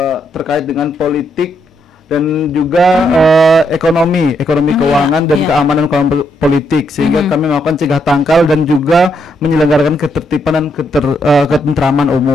terkait dengan politik dan juga ekonomi keuangan dan iya. keamanan politik, sehingga kami melakukan cegah tangkal dan juga menyelenggarakan ketertiban dan ketentraman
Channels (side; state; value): both; normal; correlation 0.77